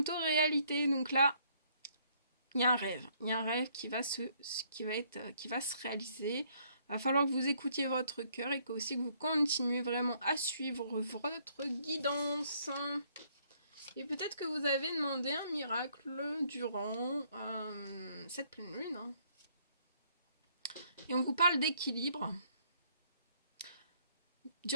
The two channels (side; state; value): both; inverted; correlation -0.66